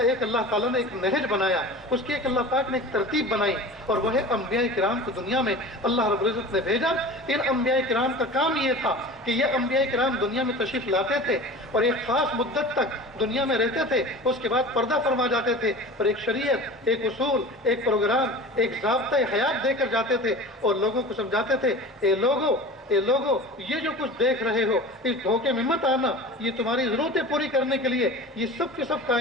ایک اللہ تعالیٰ نے ایک نہج بنایا، اس کی ایک اللہ پاک نے ایک ترتیب بنائی، اور وہ ہے انبیاء کرام کو دنیا میں اللہ رب العزت نے بھیجا. ان انبیاء کرام کا کام یہ تھا کہ یہ انبیاء کرام دنیا میں تشریف لاتے تھے اور ایک خاص مدت تک دنیا میں رہتے تھے، اس کے بعد پردہ فرما جاتے تھے اور ایک شریعت، ایک اصول، ایک پروگرام، ایک ضابطۂ حیات دے کر جاتے تھے اور لوگوں کو سمجھاتے تھے اے لوگو یہ جو کچھ دیکھ رہے ہو اس دھوکے میں مت آنا. یہ تمہاری ضرورتیں پوری کرنے کے لیے، یہ سب کے سب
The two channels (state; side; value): normal; both; correlation 0.36